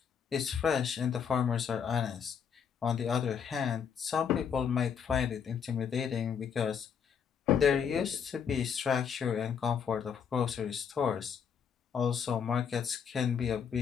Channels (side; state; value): right; quieter; 7.2 dB